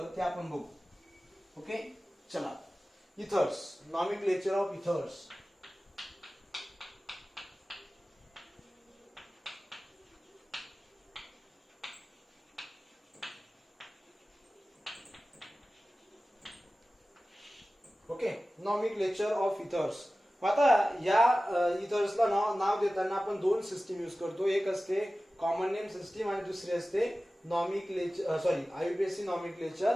ते आपण बघू. ओके चला. Ethers, nomenclature of ethers. Okay, nomenclature of ethers. आता या इथर्सला नाव देताना आपण 2 सिस्टीम यूज करतो. एक असते कॉमन नेम सिस्टीम आणि दुसरी असते आययुपीएसी नॉमेनक्लेचर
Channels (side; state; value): both; normal; correlation 0.96